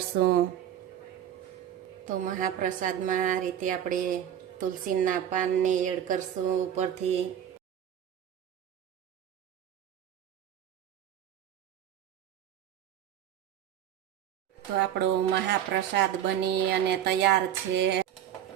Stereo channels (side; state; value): left; quieter; 10.1 dB